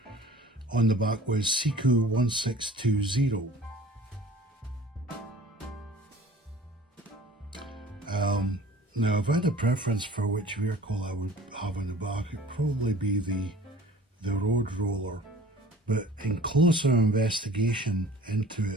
on the back was Siku 1620. Now, if I had a preference for which vehicle I would have on the back, it'd probably be the road roller. But in closer investigation into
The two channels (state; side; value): normal; both; correlation 0.47